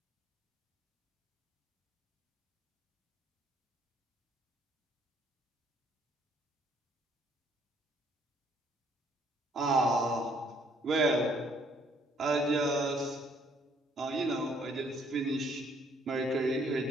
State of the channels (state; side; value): normal; both; correlation 0.64